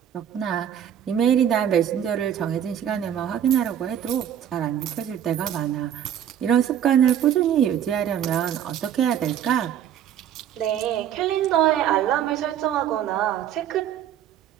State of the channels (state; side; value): quieter; left; 9.8 dB